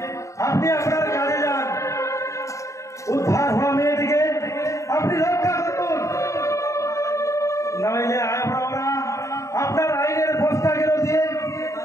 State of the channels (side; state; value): right; late; 0.15 ms